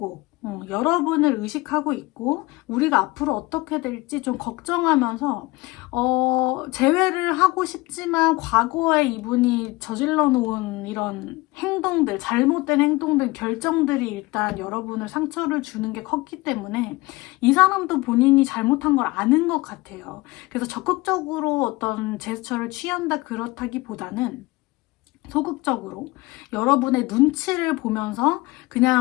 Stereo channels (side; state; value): right; quieter; 21.7 dB